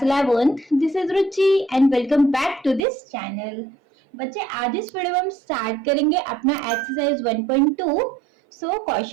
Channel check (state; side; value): drops out; left; at 2.8 s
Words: 11th, this is Ruchi and welcome back to this channel. बच्चे आज इस video में हम स्टार्ट करेंगे अपना एक्सरसाइज 1.2. सो